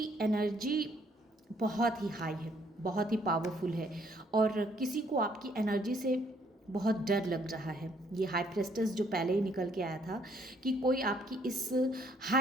एनर्जी बहुत ही हाई है, बहुत ही पावरफुल है, और किसी को आपकी एनर्जी से बहुत डर लग रहा है। ये हाई प्रेस्टेस जो पहले ही निकल के आया था कि कोई आपकी इस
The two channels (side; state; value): both; normal; correlation 0.67